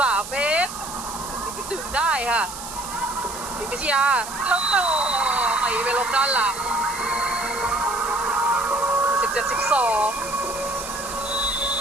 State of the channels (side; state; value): right; noise; hiss, 10 dB below the sound